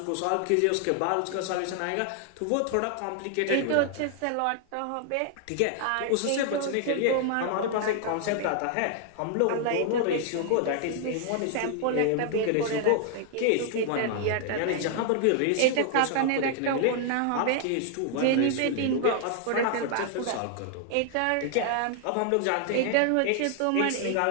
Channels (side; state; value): both; different; correlation 0.00